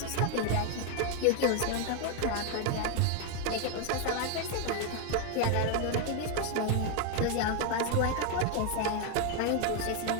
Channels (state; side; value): different; both; correlation 0.01